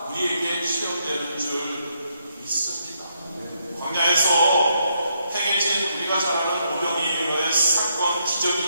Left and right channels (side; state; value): both; inverted; correlation -0.76